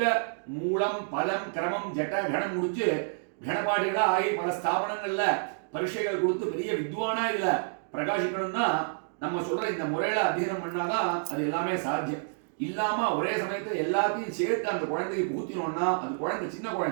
மூலம் பலம் கிரமம் ஜட்ட கணம் முடிச்சு கணபாடிகளா ஆகி பல ஸ்தாபனங்கள்ல பரீட்சைகள் கொடுத்து பெரிய வித்வானா இதுல பிரகாசிக்கணும்னா நம்ம சொல்ற இந்த முறையில அத்தியனம் பண்ணாதான் அது எல்லாமே சாத்தியம். இல்லாம ஒரே சமயத்துல எல்லாத்தையும் சேர்த்து அந்த குழந்தைக்கு புகுத்தினோம்னா அது குழந்தை சின்ன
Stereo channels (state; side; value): silent; left; digital silence